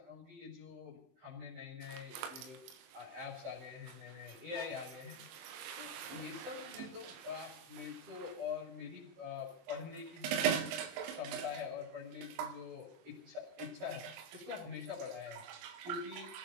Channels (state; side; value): late; left; 23 ms